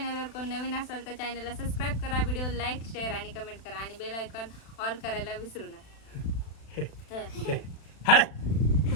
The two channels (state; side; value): late; right; 36 ms